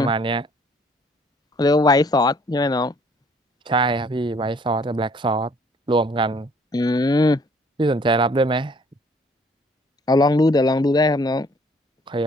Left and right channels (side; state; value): both; normal; correlation 0.60